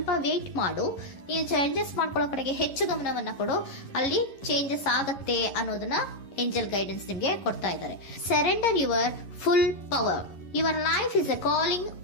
ವೇಟ್ ಮಾಡು, ನೀವು ಚೇಂಜಸ್ ಮಾಡ್ಕೊಳ್ಳೋ ಕಡೆಗೆ ಹೆಚ್ಚು ಗಮನವನ್ನ ಕೊಡು, ಅಲ್ಲಿ ಚೇಂಜಸ್ ಆಗತ್ತೆ ಅನ್ನೋದನ್ನ ಏಂಜಲ್ ಗೈಡೆನ್ಸ್ ನಿಮ್ಗೆ ಕೊಡ್ತಾ ಇದ್ದಾರೆ. Surrender your full power. Your life is a calling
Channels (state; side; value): late; right; 11 ms